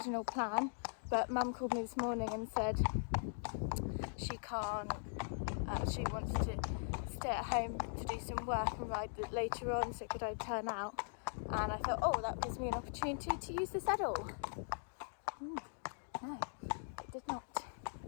plan, but mum called me this morning and said she can't, she wants to stay at home to do some work and ride later on, so could I turn out? And I thought, oh, that gives me an opportunity to use the saddle. No, it did not.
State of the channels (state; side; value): silent; right; digital silence